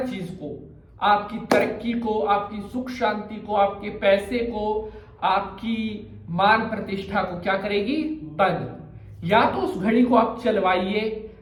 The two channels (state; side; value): identical; both; correlation 1.00